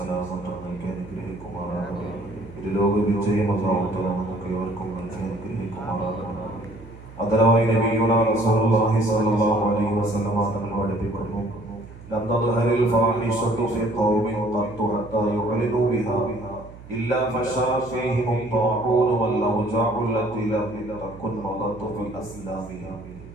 നൽകി അനുഗ്രഹിക്കുമാറാകട്ടെ. ഇരുലോക വിജയം അല്ലാഹു തആല നമുക്ക് ഏവർക്കും നൽകി അനുഗ്രഹിക്കുമാറാകട്ടെ. അതരമായി നബിയുനാ റസൂലുള്ളാഹി സ്വല്ലല്ലാഹു അലൈഹി വസല്ലം തങ്ങൾ പഠിപ്പിക്കുന്നു, ലം തദ്ഹരിൽ ഫാഹിഷതു ഫീ ഖൗമിൻ ഖത്തു ഹത്താ യുഅലിനു ബിഹാ ഇല്ലാ ഫശാ ഫീഹിം الطاعون والأوجاع التي لم تكن مضت في أسلافهم.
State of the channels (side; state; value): right; noise; hum, 18 dB below the sound